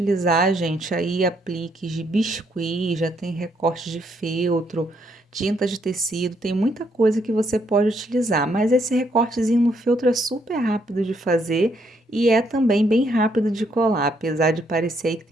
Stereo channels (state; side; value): normal; both; correlation 0.72